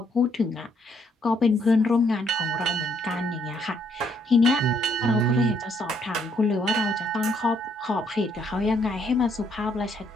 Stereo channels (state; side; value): normal; both; correlation 0.70